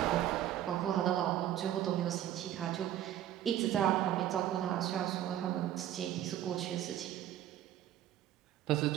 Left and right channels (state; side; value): quieter; left; 12.0 dB